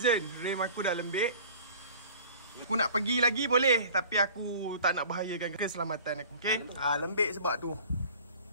Rem aku dah lembik. Aku nak pergi lagi boleh, tapi aku tak nak bahayakan keselamatan aku. Okay, lembik sebab tu.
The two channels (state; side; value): inverted; both; correlation -0.45